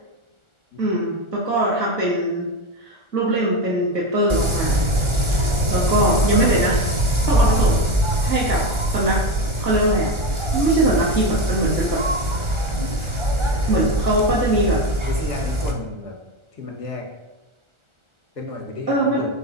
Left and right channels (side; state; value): left; late; 1.4 ms